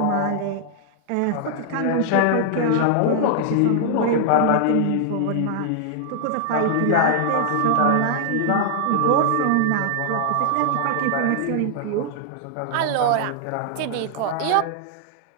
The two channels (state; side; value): different; both; correlation -0.01